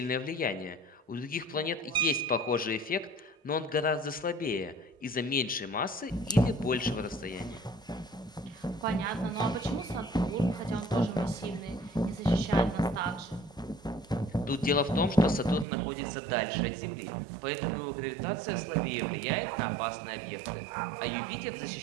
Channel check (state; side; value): drops out; left; at 15.7 s